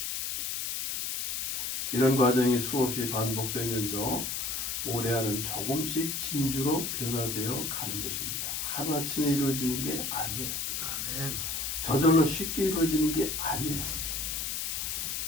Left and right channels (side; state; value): left; noise; hiss, 2 dB below the sound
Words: 이런 과정이 수없이 반복되면서 모래알은 조금씩 진주로 변화되어 가는 것입니다. 하루아침에 이루어지는 게 아니에요. 저절로 쉽게 이루어지는 게 아니에요.